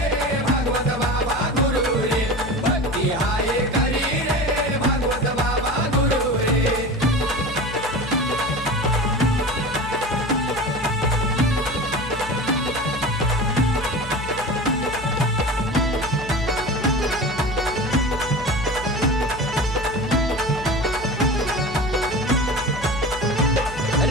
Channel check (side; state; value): left; noise; hum, 12 dB below the sound